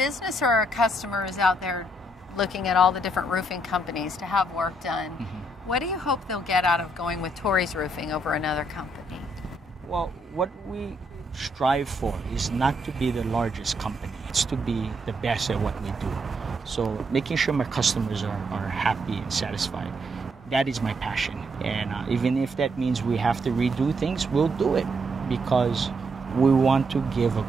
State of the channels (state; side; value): normal; both; correlation 0.75